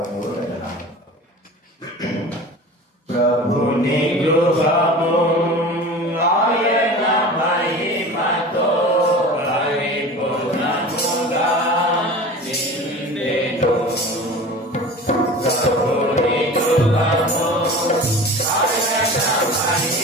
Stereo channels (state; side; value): normal; both; correlation 0.37